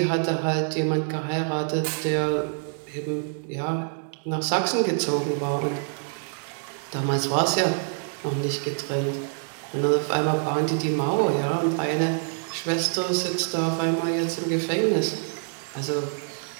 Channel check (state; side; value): silent; left; 61 dB below the other